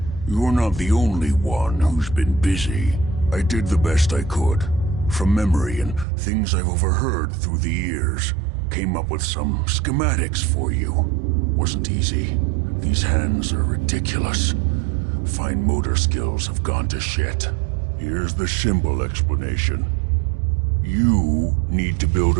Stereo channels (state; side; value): drops out; left; at 6.1 s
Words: You're not the only one who's been busy. I did the best I could. From memory and things I've overheard through the years. Came up with some schematics for you. Wasn't easy. These hands are ridiculous. Fine motor skills have gone to shit. Here's the simple explanation. You need to build